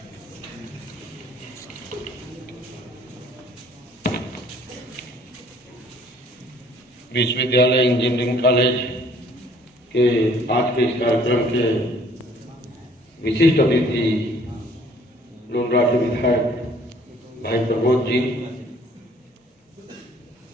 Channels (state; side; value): normal; both; correlation 0.58